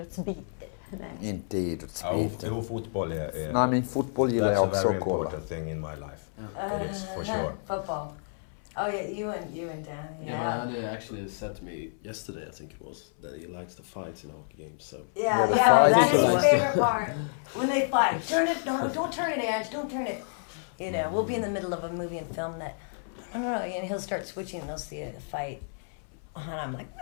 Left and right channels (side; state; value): right; silent; 58 dB below the other